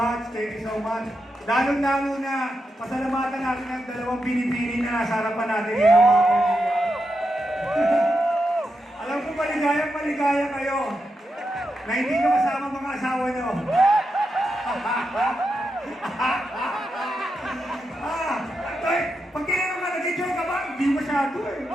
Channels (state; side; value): normal; both; correlation 0.86